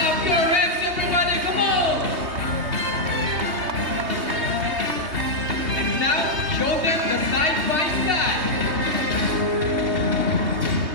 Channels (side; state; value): left; late; 3.2 ms